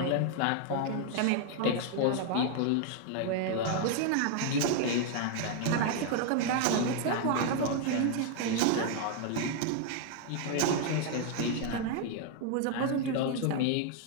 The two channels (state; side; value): different; both; correlation 0.00